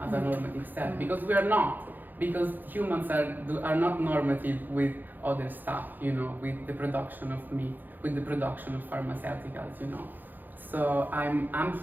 as a normative self, because we are not. Because humans are not normative with other stuff. You know, with the production of meat, with the production of pharmaceuticals. You know. So I'm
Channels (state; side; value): late; left; 0.087 ms